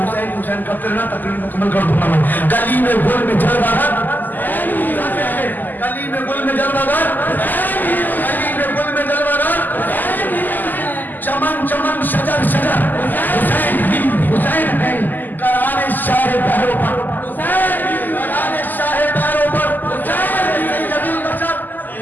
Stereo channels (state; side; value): late; right; 0.086 ms